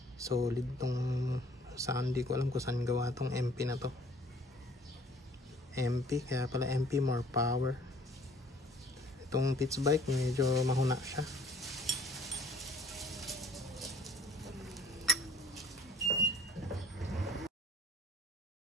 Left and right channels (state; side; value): normal; both; correlation 0.54